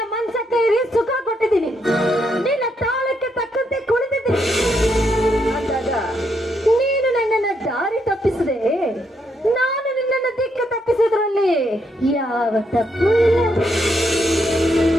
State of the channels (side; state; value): both; normal; correlation 0.77